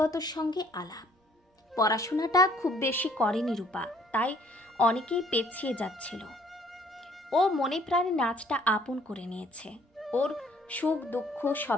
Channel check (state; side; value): normal; both; correlation 0.60